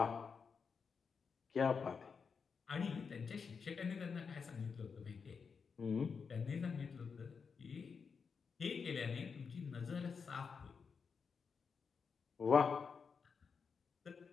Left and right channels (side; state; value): right; quieter; 5.7 dB